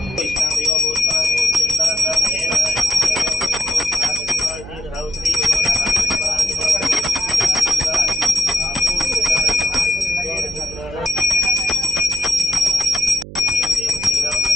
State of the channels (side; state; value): right; noise; hum, 15 dB below the sound